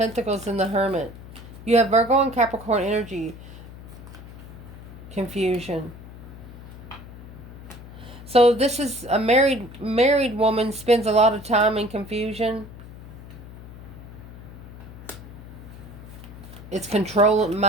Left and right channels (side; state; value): left; noise; hum, 15 dB below the sound